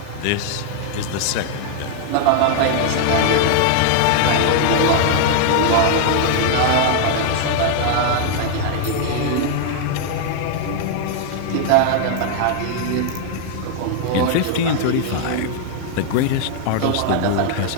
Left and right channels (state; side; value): different; both; correlation 0.00